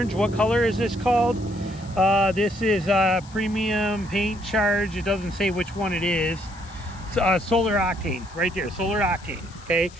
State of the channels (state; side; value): noise; left; hiss, 23 dB below the sound